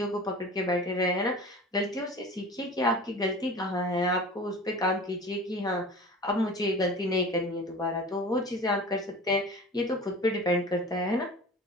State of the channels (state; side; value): normal; both; correlation 0.38